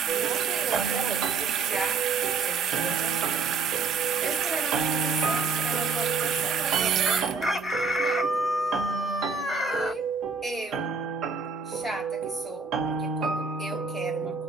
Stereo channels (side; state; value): left; quieter; 4.8 dB